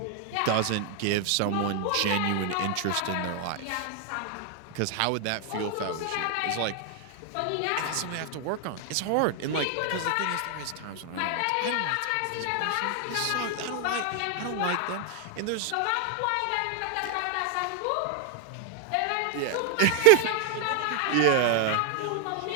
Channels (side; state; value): both; different; correlation 0.01